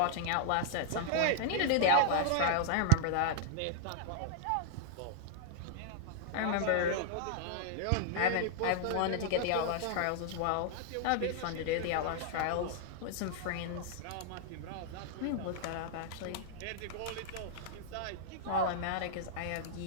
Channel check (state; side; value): different; both; correlation -0.01